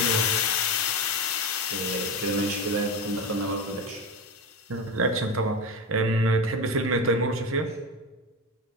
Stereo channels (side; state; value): both; normal; correlation 0.20